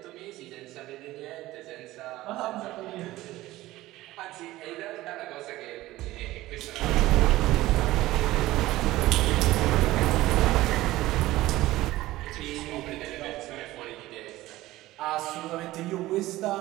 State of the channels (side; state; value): left; quieter; 17.0 dB